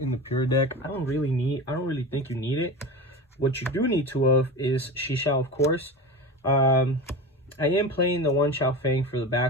the pure deck. I don't really think you need it. What you do need 2 of is Shisha, of course. I am playing the 1 Xiao Fang for the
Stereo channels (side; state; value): both; normal; correlation 0.27